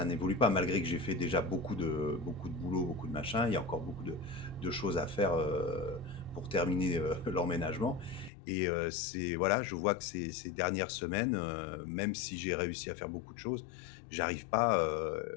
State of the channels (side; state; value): right; drops out; at 8.3 s